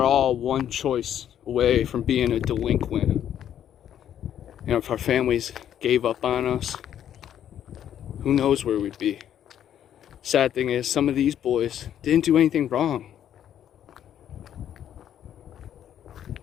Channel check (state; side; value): quieter; right; 10.2 dB